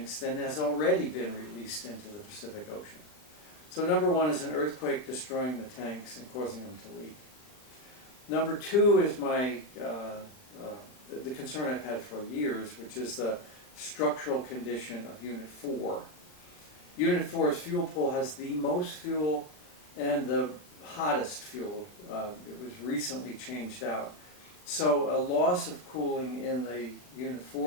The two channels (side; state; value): right; late; 39 ms